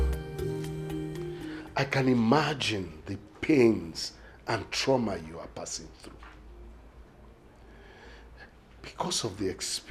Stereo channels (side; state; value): both; identical; correlation 1.00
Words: I can imagine the pains and trauma you are passing through. Because of the